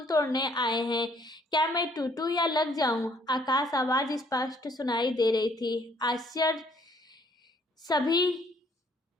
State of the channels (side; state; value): both; normal; correlation 0.64